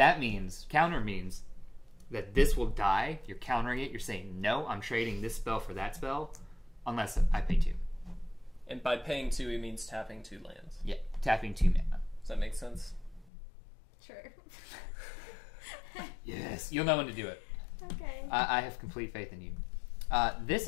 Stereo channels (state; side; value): drops out; right; at 13.3 s